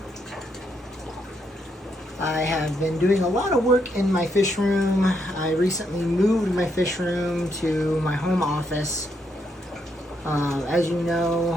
I have been doing a lot of work in my fish room. I recently moved my fish room to my home office. As you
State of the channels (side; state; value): both; normal; correlation 0.77